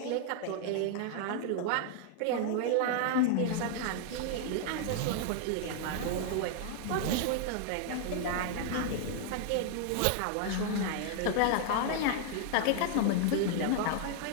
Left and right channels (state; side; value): different; both; correlation 0.00